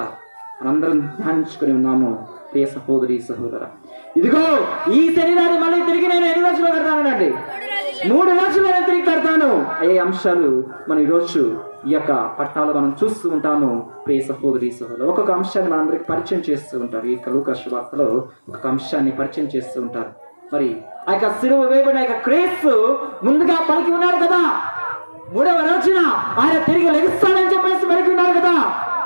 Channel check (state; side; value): inverted; both; correlation -1.00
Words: మనందరం ధ్యానించుకుని ఉన్నాము ప్రియ సహోదరి సహోదరా. ఇదిగో ఈ శరీరాన్ని మళ్ళీ తిరిగి నేను ఎన్ని రోజులు కడతానండి? 3 రోజులు నేను తిరిగి కడతాను. అయ్యే అంశాలు మనం ఈరోజు ఈ యొక్క పట్టాలు మనం చూస్తూ ఉంటాము ప్రియ సహోదరి సహోదరు. ఒక్కొక్క అంశాన్ని మనందరికి పరిచయం చేస్తూ ఉంటారు. ఈ లూకా సువార్తలో ఒక అంశాన్ని పరిచయం చేస్తూ ఉంటారు. మరి ఆ యొక్క సిలువ వేయబడిన యొక్క క్రీస్తు ముందుగా పలికి ఉన్నాడు కదా, 3వ రోజున ఆయన తిరిగి లెగుస్తాడని చెప్పేసి పలికి ఉన్నాడు కదా,